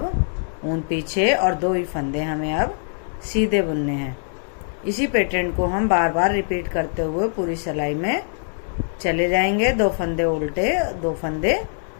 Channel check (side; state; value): right; silent; digital silence